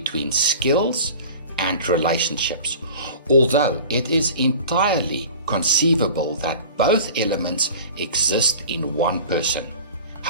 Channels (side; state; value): both; inverted; correlation -0.41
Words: skills and relationships, although it is entirely conceivable that both elements exist in one person.